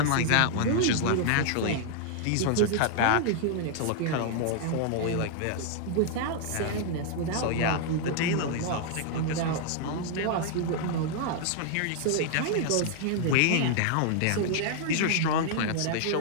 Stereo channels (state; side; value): different; both; correlation 0.00